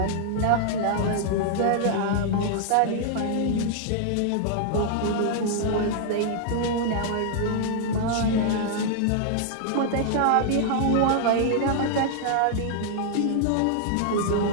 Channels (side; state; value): both; different; correlation -0.01